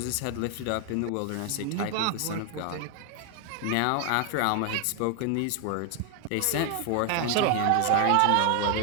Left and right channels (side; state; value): both; different; correlation 0.00